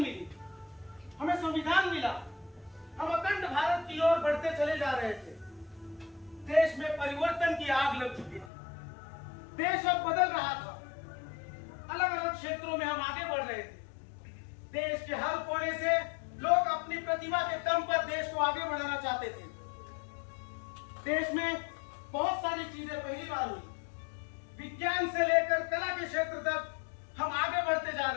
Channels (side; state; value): right; drops out; at 8.5 s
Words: हमें संविधान मिला, हम अखंड भारत की ओर बढ़ते चले जा रहे थे। देश में परिवर्तन की आग लग चुकी थी, देश अब बदल रहा था। अलग अलग क्षेत्रों में हम आगे बढ़ रहे थे। देश के हर कोने से लोग अपनी प्रतिभा के दम पर देश को आगे बढ़ाना चाहते थे। देश में बहुत सारी चीजें पहली बार हुई। विज्ञान से लेकर कला के क्षेत्र तक हम आगे बढ़ते जा